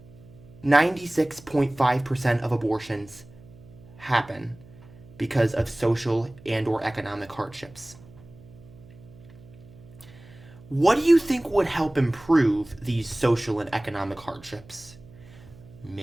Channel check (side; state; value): right; noise; hum, 22 dB below the sound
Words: 96.5% of abortions happen because of social and or economic hardships. What do you think would help improve these social and economic hardships?